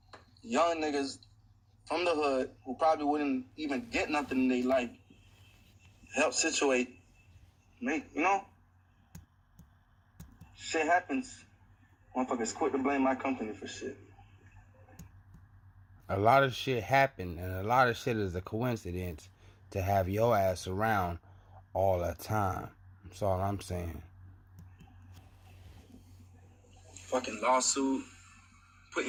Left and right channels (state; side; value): identical; both; correlation 1.00